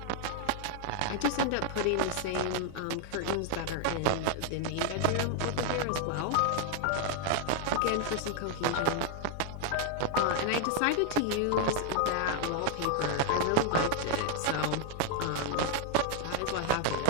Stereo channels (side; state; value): both; different; correlation 0.00